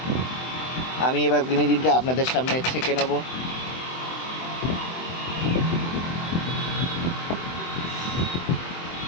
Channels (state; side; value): late; right; 23 ms